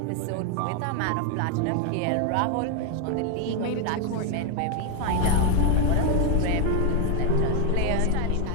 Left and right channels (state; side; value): different; both; correlation 0.01